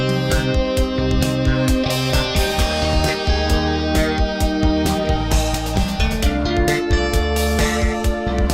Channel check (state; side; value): identical; both; correlation 1.00